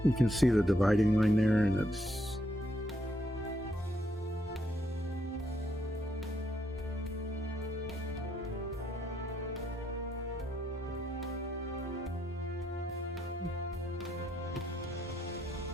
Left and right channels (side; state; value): both; normal; correlation 0.75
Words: You can see the dividing line there, and it's